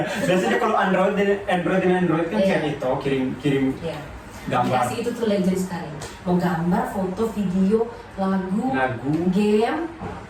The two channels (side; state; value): both; identical; correlation 1.00